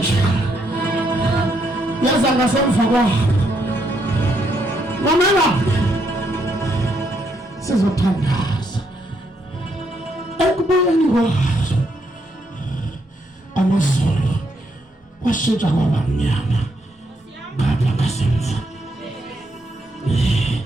Yaza ngasemva kwabo. Mamela. Sizothandaza. Ekubuyeni kwazo. Amazulu. Washintsha kwaba mnyama. Ngapha ngasemva.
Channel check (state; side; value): normal; both; correlation 0.75